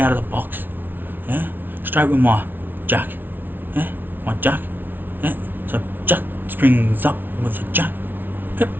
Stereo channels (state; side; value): late; left; 0.095 ms